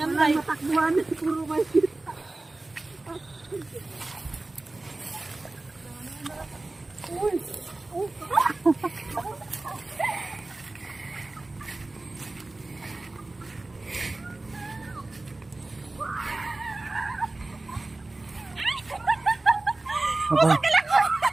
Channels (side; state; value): left; quieter; 3.0 dB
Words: Walang matakbuhan, puro may kita. Uy!